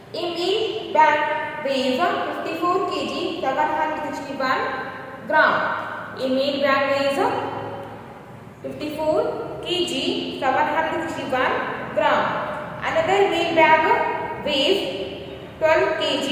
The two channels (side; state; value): both; identical; correlation 1.00